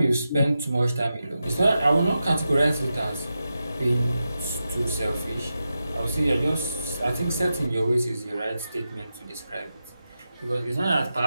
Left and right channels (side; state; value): both; inverted; correlation -0.90